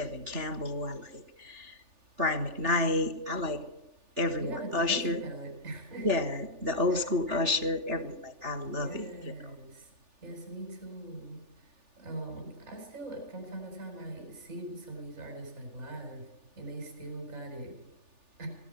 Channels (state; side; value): late; left; 3.4 ms